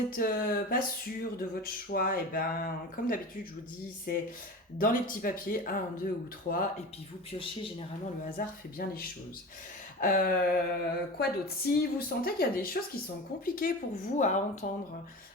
pas sûr de votre choix, et ben comme d'habitude, je vous dis, c'est dans les petits papiers, un, deux ou trois, et puis vous piochez. Généralement, le hasard fait bien les choses. Quoi d'autre? Si vous sentez qu'il y a des choses qui sont compliquées pour vous à entendre,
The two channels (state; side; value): normal; both; correlation 0.31